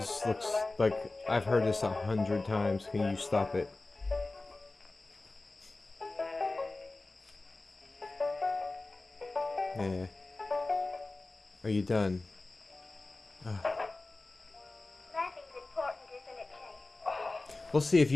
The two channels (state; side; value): quieter; right; 3.2 dB